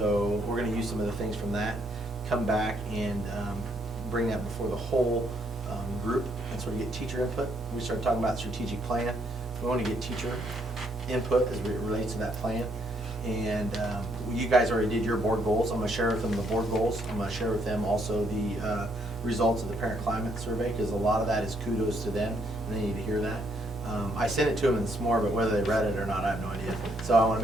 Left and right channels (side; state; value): both; normal; correlation 0.71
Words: we're going to use some of the things from that, come back and bring that before the whole group and sort of get teacher input. We started talking about strategic plan. We want to get teacher input as it relates to that plan. And you guys already did your board goals. I'm going to share with them the board goals. I'm going to share with them also the results of the parent climate survey, because a lot of that is kudos to them, and they need to hear that. I sent it to them this morning, but whether they read it or not, I have no idea. So I want to